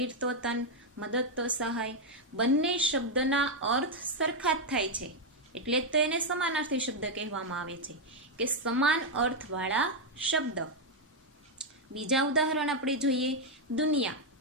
તો તન, મદદ તો સહાય. બંને શબ્દના અર્થ સરખા જ થાય છે, એટલે જ તો એને સમાનાર્થી શબ્દ કહેવામાં આવે છે, કે સમાન અર્થવાળા શબ્દ. બીજા ઉદાહરણ આપણે જોઈએ. દુનિયા.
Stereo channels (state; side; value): normal; both; correlation 0.01